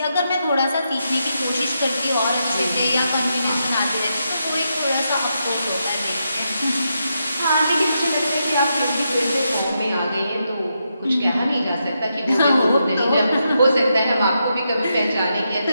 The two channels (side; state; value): both; inverted; correlation -0.83